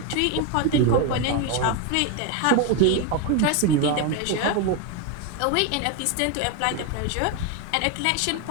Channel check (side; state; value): both; different; correlation 0.02